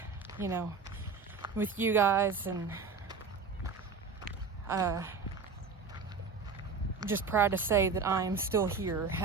with you guys, and just proud to say that I am still here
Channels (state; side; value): quieter; left; 4.9 dB